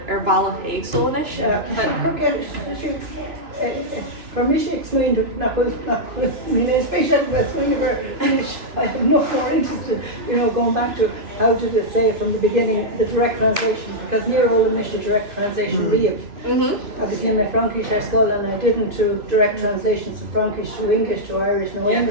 ar balla éagsúlanis. Permission explained not with especially which I'm not more interested, you know, going back to how did it say from the beginning the direct translation, because near all initial direct translation Liath. I was in my Frankish at school and I didn't do direct translations from Frankish to English to Irish no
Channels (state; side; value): late; left; 2.9 ms